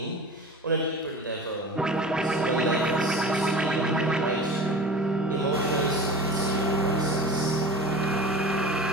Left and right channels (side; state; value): both; normal; correlation 0.36